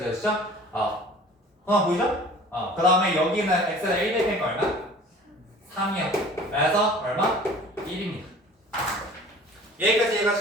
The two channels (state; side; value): normal; both; correlation 0.46